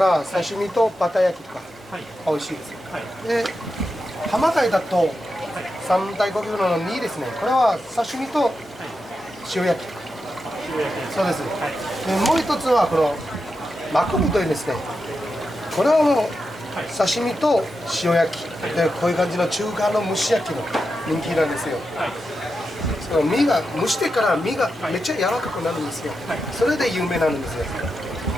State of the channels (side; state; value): both; normal; correlation 0.88